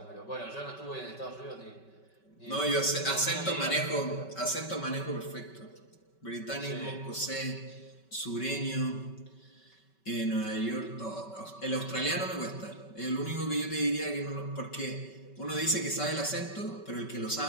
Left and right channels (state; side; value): late; right; 5.2 ms